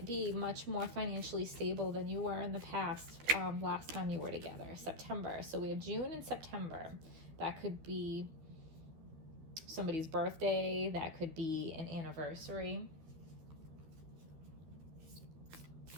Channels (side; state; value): left; late; 12 ms